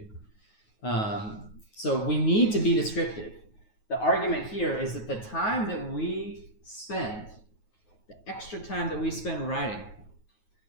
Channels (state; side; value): late; right; 9.4 ms